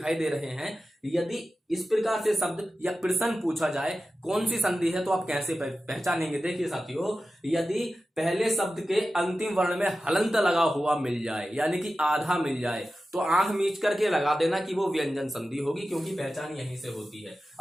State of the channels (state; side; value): normal; both; correlation 0.94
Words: दे रहे हैं, यदि इस प्रकार से शब्द या प्रश्न पूछा जाए कौन सी संधि है, तो आप कैसे पहचानेंगे? देखिए साथियों, यदि पहले शब्द के अंतिम वर्ण में हलंत लगा हुआ मिल जाए, यानी कि आधा मिल जाए, तो आंख मीच करके लगा देना कि वो व्यंजन संधि होगी, क्योंकि पहचान यहीं से होती है।